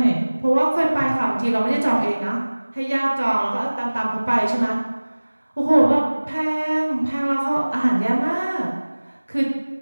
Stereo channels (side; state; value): both; inverted; correlation -1.00